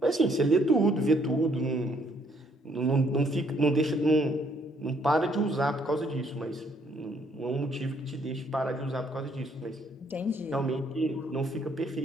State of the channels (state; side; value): normal; both; correlation 0.67